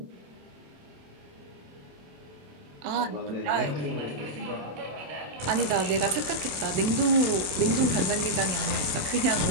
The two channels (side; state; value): left; late; 27 ms